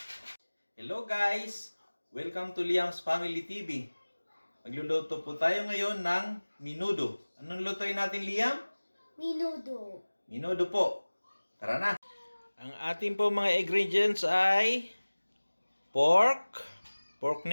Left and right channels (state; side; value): inverted; both; correlation -1.00